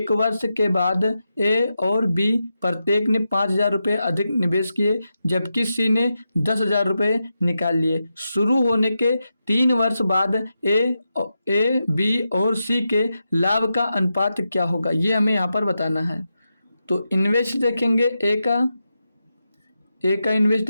वर्ष के बाद ए और बी प्रत्येक ने 5,000 रुपये अधिक निवेश किए, जबकि सी ने 10,000 रुपये निकाल लिए। शुरू होने के 3 वर्ष बाद ए, बी और सी के लाभ का अनुपात क्या होगा, ये हमें यहाँ पर बताना है। तो इन्वेस्ट देखेंगे ए का इन्वेस्ट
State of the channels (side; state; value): both; inverted; correlation -0.88